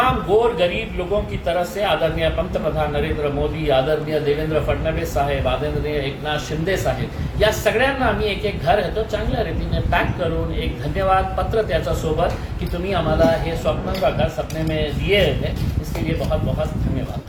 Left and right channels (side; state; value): both; identical; correlation 1.00